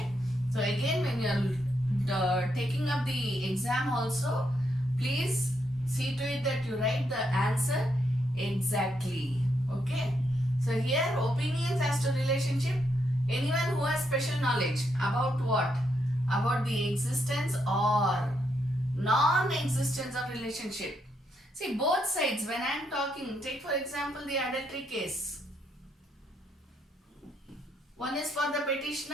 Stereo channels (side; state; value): both; normal; correlation 0.78